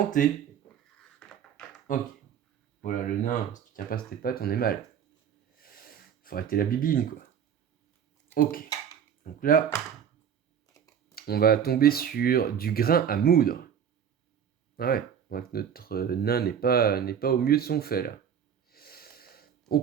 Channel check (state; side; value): quieter; left; 8.2 dB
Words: Ok. Voilà, le nain, si tu tiens pas sur tes pattes, on est mal. Faut arrêter la bibine, quoi. Ok. Donc là, on va tomber sur du grain à moudre. Ah ouais, on voit que notre nain n'est pas au mieux de son fait, là.